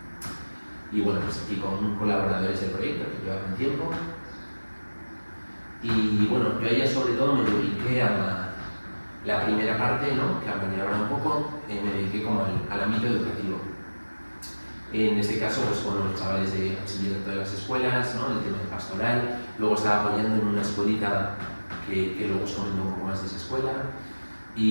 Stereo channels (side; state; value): both; inverted; correlation -1.00